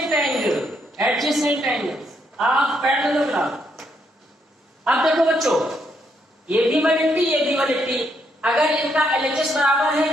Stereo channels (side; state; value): both; normal; correlation 0.75